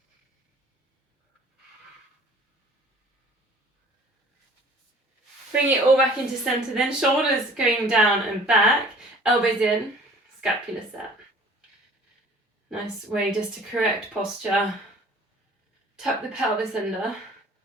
Bring it all back into centre then, shoulders going down and back, elbows in, scapula set. Nice way just to correct posture. Tuck the pelvis under.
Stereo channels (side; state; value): both; normal; correlation 0.50